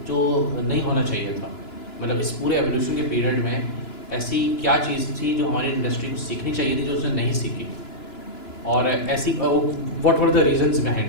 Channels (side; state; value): right; late; 2.9 ms